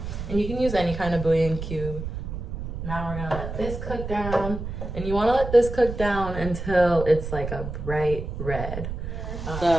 And you can use any kind of bouillon cube. Now we're gonna let this cook down. And you wanna let this cook down until it's like a bright red.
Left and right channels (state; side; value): noise; right; rumble, 6 dB below the sound